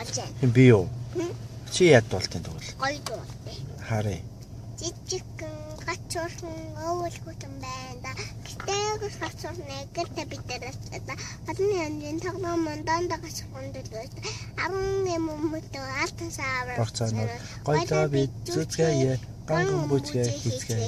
Би юу? Чи яд дуултын тэгвэл? Гоё дуулжээ. Харъя. Жижигхэн gatsorhan уул хутан байна. Гэтэл gatsorhan гэртээ бидэрээс олон янзын тоглоомон дандаа gatsorhan дөлөөс 10 юммөдөө алтан савар. Борцаанууд гоёлоо бид зүцгээе. Канган бутгээ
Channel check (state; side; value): identical; both; correlation 1.00